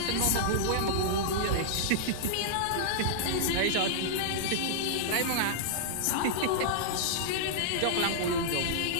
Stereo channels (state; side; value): different; both; correlation -0.02